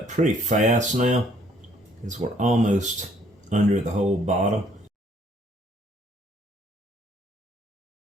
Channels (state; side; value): normal; both; correlation 0.63